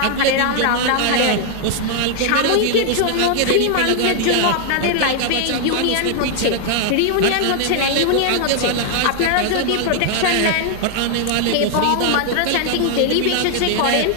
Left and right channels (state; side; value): different; both; correlation 0.00